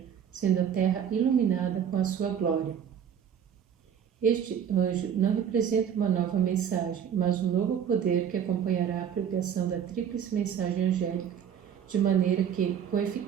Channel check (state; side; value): quieter; left; 8.5 dB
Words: sendo a terra iluminada com a sua glória. Este anjo não representa uma nova mensagem, mas um novo poder que acompanhará a pregação da tríplice mensagem angélica, de maneira que, com